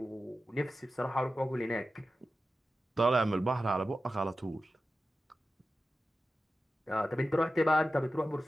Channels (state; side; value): normal; both; correlation 0.93